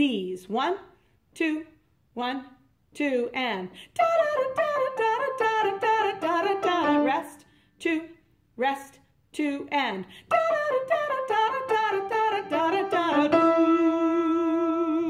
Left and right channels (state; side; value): identical; both; correlation 1.00